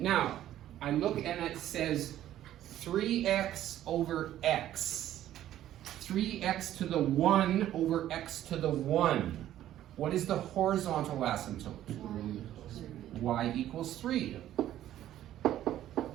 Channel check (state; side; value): quieter; left; 12.5 dB